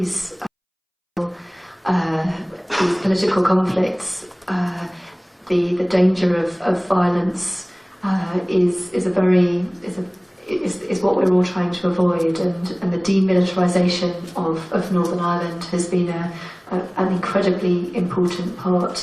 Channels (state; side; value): identical; both; correlation 1.00